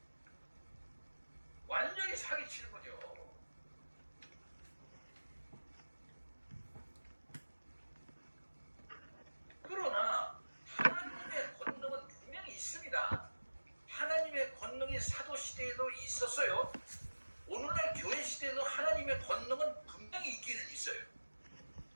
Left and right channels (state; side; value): inverted; both; correlation -1.00